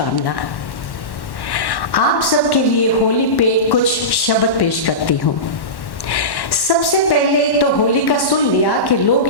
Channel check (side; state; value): right; late; 1.1 ms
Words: आप सबके लिए होली पे कुछ शब्द पेश करती हूँ। सबसे पहले तो होली का सुन लिया कि लोग